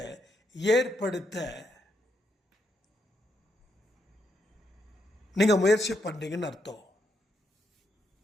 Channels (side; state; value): both; normal; correlation 0.80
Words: ஏற்படுத்த நீங்க முயற்சி பண்றீங்கன்னு அர்த்தம்.